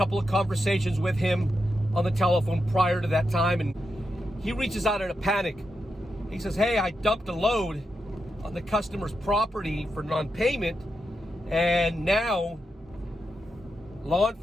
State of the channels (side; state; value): both; normal; correlation 0.86